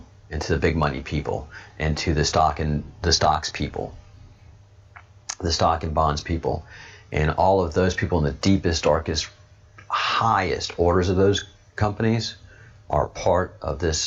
and to the big money people and to the stocks people, the stock and bonds people. And all of those people in the deepest, darkest, highest orders of those companies are part of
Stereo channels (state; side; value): identical; both; correlation 1.00